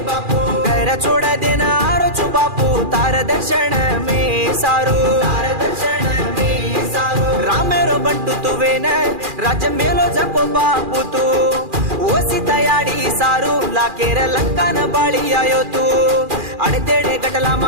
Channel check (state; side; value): late; left; 2.4 ms